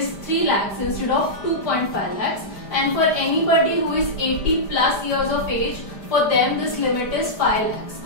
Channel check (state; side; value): late; right; 5.0 ms